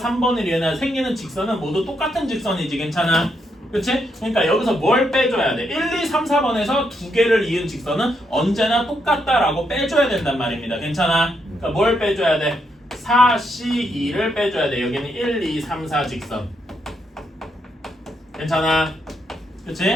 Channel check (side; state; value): both; normal; correlation 0.79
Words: 3번을 이으나 생기는 직선은 모두 똑같은 직선이지. 괜찮아? 그치? 그러니까 여기서 뭘 빼줘야 돼? 1, 2, 3, 4번에서 2개를 이은 직선은 언제나 똑같다라고 빼줘야 된단 말입니다. 괜찮아? 그러니까 뭘 빼줘야 돼? 4C2를 빼줘야 돼. 여기는 1, 2, 3, 4 직선. 괜찮아?